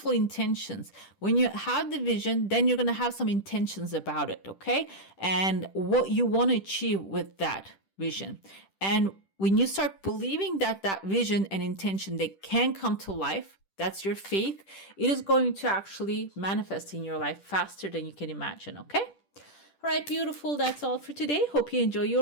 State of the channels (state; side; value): late; right; 10 ms